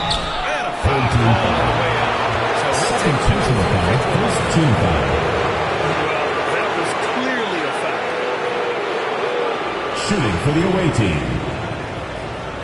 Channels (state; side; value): identical; both; correlation 1.00